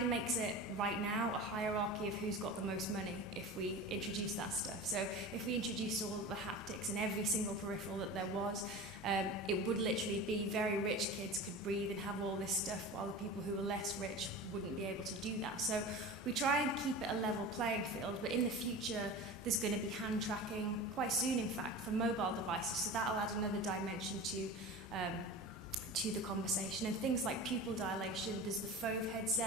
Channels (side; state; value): both; normal; correlation 0.32